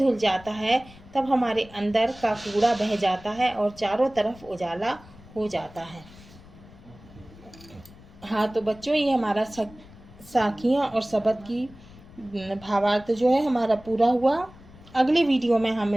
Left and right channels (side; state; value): left; noise; rumble, 21 dB below the sound